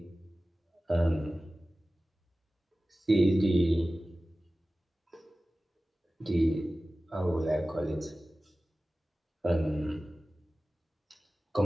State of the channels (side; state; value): both; normal; correlation 0.96